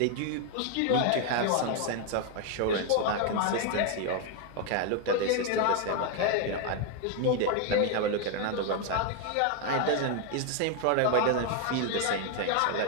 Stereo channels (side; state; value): both; different; correlation 0.01